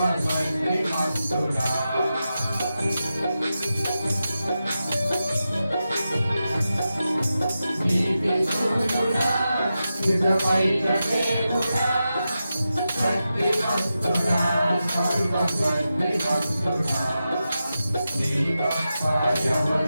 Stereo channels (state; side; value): inverted; both; correlation -0.91